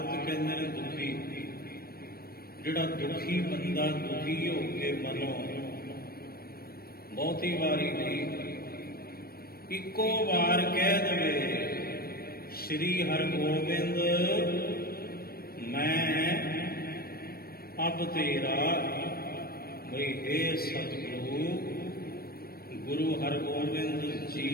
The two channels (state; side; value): late; right; 0.44 ms